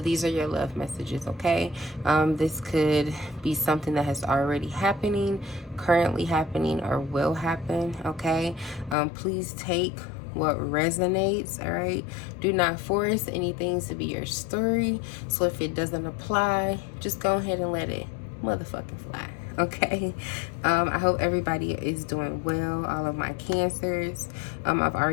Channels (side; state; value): right; drops out; at 9.0 s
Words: are your love messages, okay? This could be something that has already happening, currently happening, or will happen, okay? Please take what resonates, all right? Do not force anything to be your story. So if it doesn't apply, just go ahead and let it motherfucking fly, okay? I hope everybody is doing well, all of my Cancers. I've